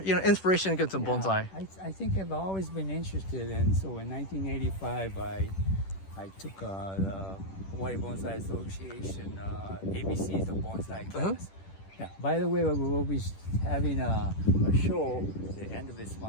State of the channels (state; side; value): late; right; 10 ms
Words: to get to bonsai? I think I've always been interested, and so in 1985 I took the Hawaii Bonsai Association ABCs of bonsai class. Yeah. By the way, we'll be having a show at the end of this